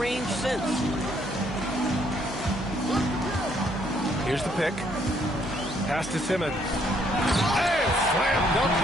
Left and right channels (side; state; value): both; normal; correlation 0.69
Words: since. Here's the pick. Pass to Simmons. And slam dunk